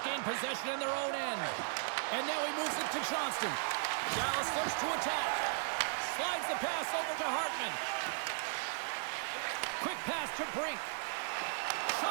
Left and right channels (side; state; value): left; silent; 53 dB below the other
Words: gain possession in their own end. And now he moves it to Johnston. Dallas looks to attack. Slides the pass over to Hartman. Quick pass to Brink.